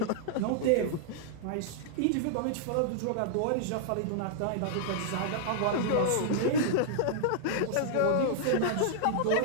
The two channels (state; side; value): different; both; correlation -0.01